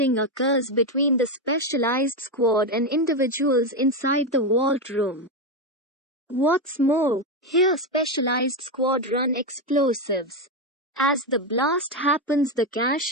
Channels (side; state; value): both; normal; correlation 0.10